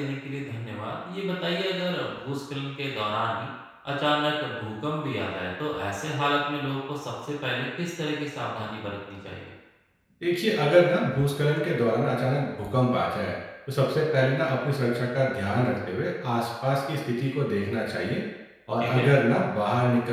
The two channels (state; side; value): identical; both; correlation 1.00